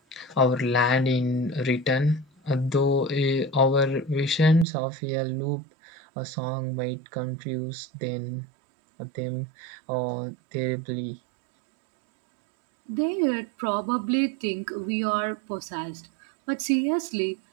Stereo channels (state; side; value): drops out; left; at 4.7 s